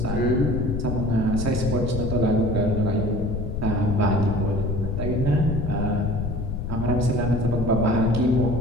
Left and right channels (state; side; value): noise; left; rumble, 3 dB below the sound